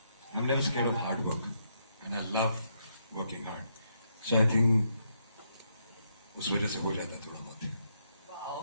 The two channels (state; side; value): inverted; both; correlation -0.77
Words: I'm never scared of hard work, and I love working hard. So I think उस वजह से हो जाता है थोड़ा बहुत.